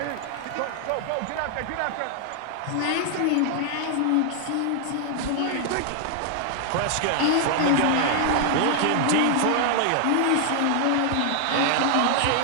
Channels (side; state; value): both; different; correlation 0.00